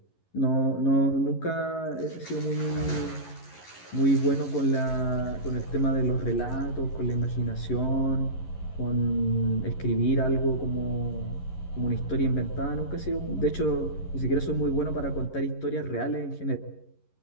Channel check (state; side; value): late; right; 11 ms